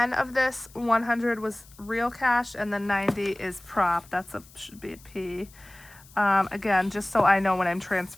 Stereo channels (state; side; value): noise; left; hiss, 24 dB below the sound